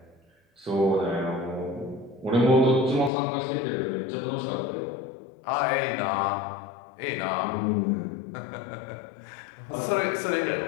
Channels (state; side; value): drops out; right; at 3.1 s